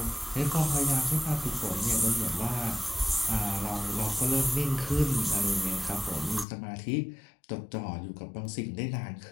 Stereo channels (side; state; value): right; drops out; at 6.5 s